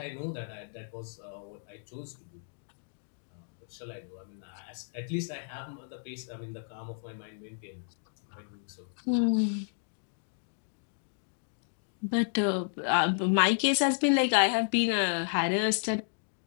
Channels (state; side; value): silent; right; digital silence